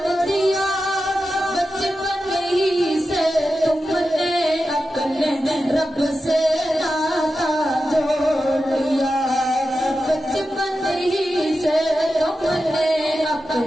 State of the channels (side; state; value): both; normal; correlation 0.91